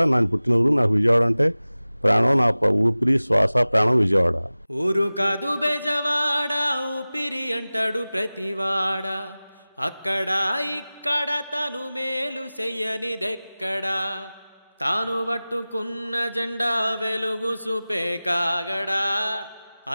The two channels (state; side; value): inverted; both; correlation -0.98